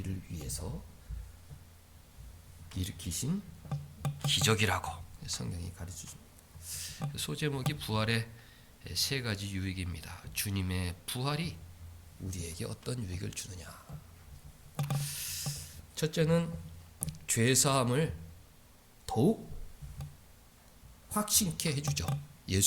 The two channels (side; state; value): both; identical; correlation 1.00